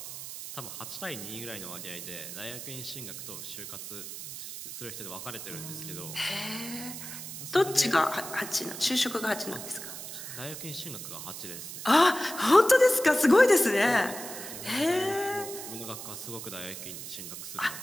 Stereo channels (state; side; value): noise; right; hiss, 9 dB below the sound